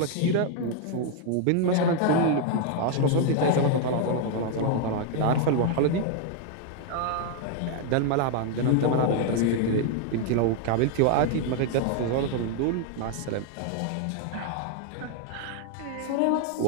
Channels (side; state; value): both; different; correlation 0.00